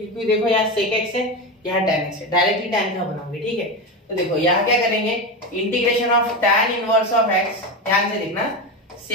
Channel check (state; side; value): normal; both; correlation 0.18